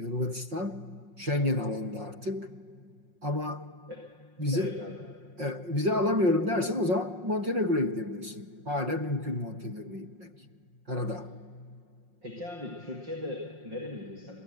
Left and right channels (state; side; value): late; left; 5.6 ms